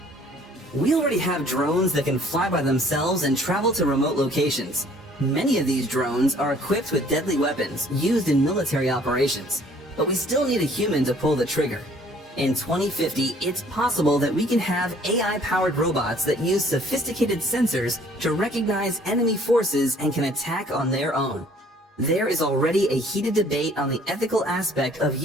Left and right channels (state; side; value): normal; both; correlation 0.57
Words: We already have drones that can fly by themselves and travel to remote locations. Many of these drones are equipped with deadly weapons used in military operations, but we still need a human to pull the trigger. In 2050, it's possible that we can have AI-powered robots that use sophisticated sensors to recognize enemy forces and can attack on their own. There is already a heated debate on the ethical aspect of